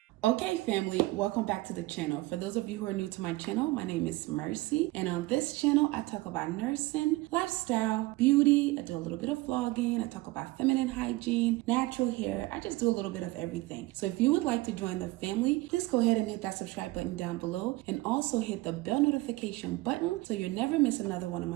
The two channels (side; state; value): left; quieter; 20.3 dB